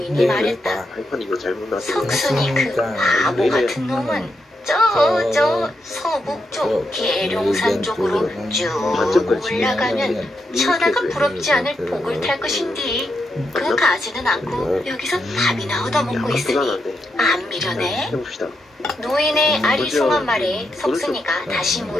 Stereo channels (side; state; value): both; normal; correlation 0.83